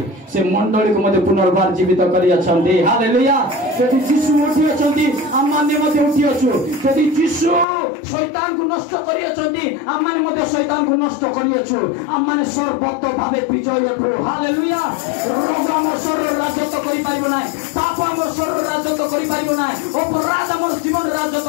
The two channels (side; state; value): right; drops out; at 7.7 s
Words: से मंडली को मध्ये पुनर्बार जीवित करी अछंती हालेलुया यदि जीशु उठी अछंती हम माने मध्ये उठी अछु यदि जीशु शैतान को नष्ट करी अछंती हम माने मध्ये शैतान को नष्ट करी अछु हम माने सर्वत्र भावे विजय अछु हालेलुया रोग हम शरीर राजत्व करि पारिबो नै पाप हम शरीर राजत्व करि पारिबो नै अपराध हमर जीवन